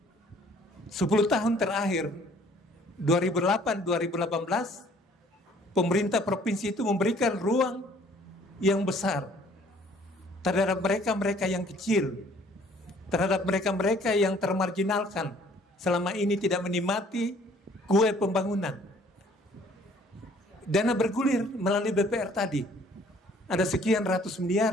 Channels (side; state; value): both; normal; correlation 0.57